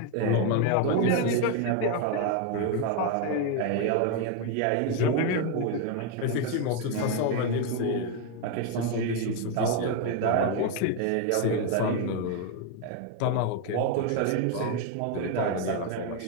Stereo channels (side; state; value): both; different; correlation 0.01